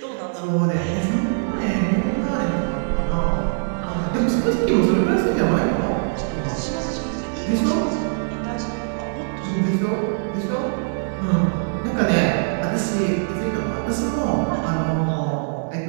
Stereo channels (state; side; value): silent; left; 64 dB below the other